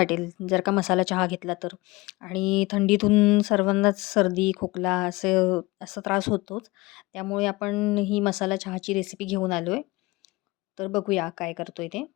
जर का मसाला चहा घेतला तर. आणि थंडीतून सर्वांनाच सर्दी, खोकला असा त्रास होतोच. त्यामुळे आपण ही मसाला चहाची रेसिपी घेऊन आलो आहे. तर बघूया काय करतोय ते.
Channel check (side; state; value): right; quieter; 21.9 dB